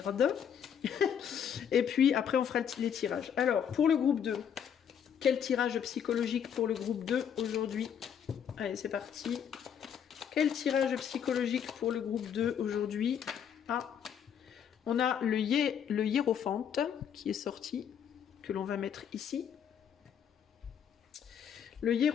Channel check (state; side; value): quieter; right; 8.3 dB